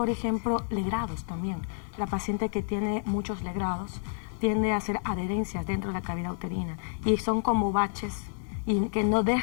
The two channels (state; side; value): silent; right; 58 dB below the other